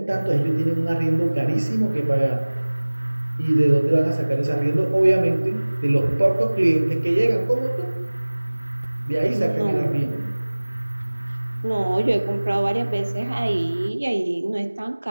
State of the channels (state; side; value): inverted; both; correlation -1.00